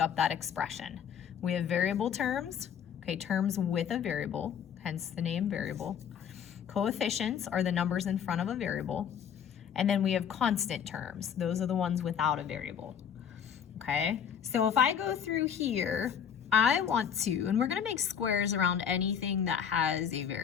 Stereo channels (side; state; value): right; quieter; 8.1 dB